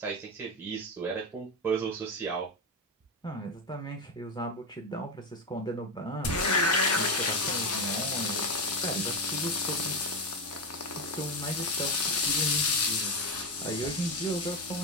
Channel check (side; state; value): both; normal; correlation 0.13